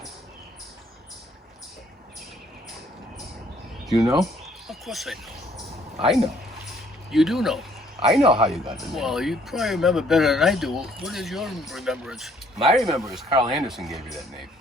Do you know? Of course I know. I know. You do know. I know how you got the name. Well, you probably remember better than I do. What is your remembrance? My remember is Carl Anderson gave you that name.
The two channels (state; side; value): normal; both; correlation 0.63